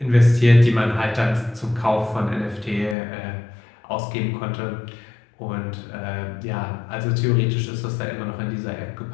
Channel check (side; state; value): right; drops out; at 3.0 s